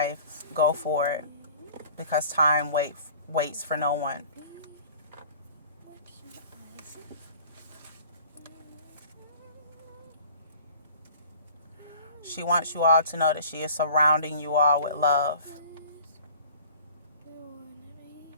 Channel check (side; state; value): both; inverted; correlation -0.47